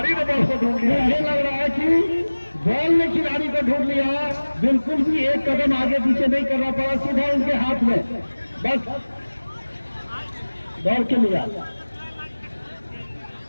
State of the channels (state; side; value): inverted; both; correlation -1.00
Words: ने बॉल को ढूंढ लिया। मुझे लग रहा है कि बॉल ने खिलाड़ी को ढूंढ लिया, बिल्कुल भी एक कदम आगे पीछे नहीं करना पड़ा, सीधा उनके हाथ में बस दौड़ के लिया।